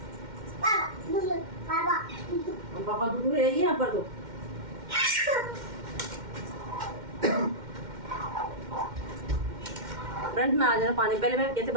पापा दूध है यहाँ पर तो। फ्रेंड्स मैं आ जाना पानी, पहले मैं कैसे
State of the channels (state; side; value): late; left; 2.1 ms